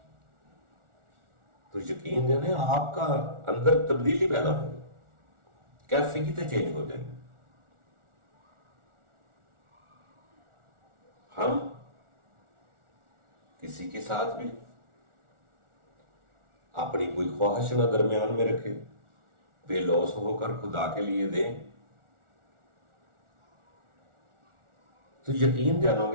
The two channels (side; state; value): left; late; 1.4 ms